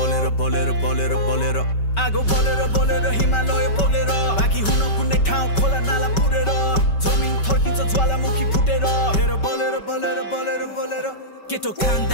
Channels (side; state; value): right; late; 5.2 ms